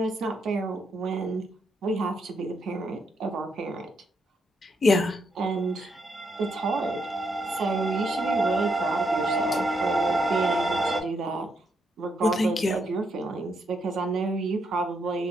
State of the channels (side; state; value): both; normal; correlation 0.78